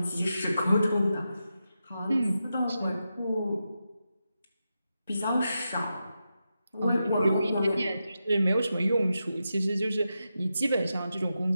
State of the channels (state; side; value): inverted; both; correlation -0.88